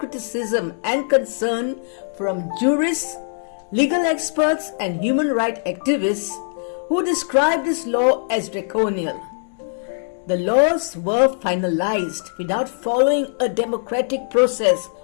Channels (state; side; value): silent; right; digital silence